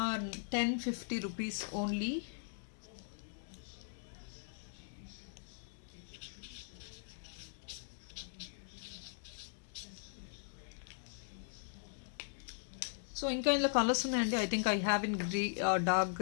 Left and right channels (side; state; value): right; silent; digital silence